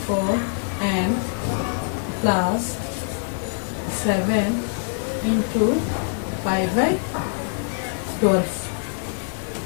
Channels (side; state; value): right; silent; digital silence